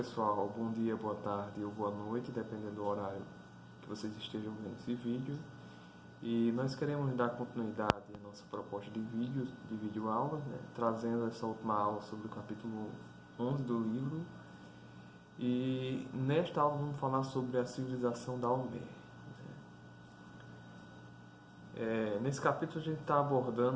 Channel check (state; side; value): identical; both; correlation 1.00